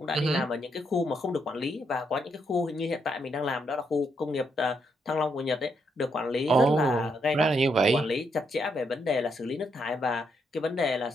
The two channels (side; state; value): both; normal; correlation 0.78